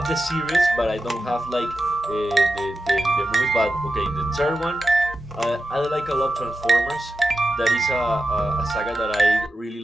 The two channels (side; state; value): both; normal; correlation 0.90